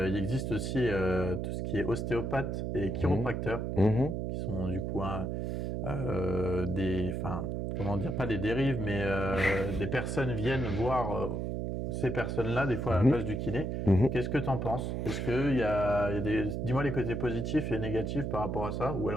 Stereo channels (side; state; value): right; noise; hum, 2 dB below the sound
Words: existe aussi tout ce qui est ostéopathe et chiropracteur, qui sont du coup comment dire, pas des dérives, mais des personnes viennent voir ces personnes-là, des fois à la place du kiné. Qu'est-ce que tu en penses? Est-ce qu'il y a dis-moi les côtés positifs et négatifs par rapport à ça, ou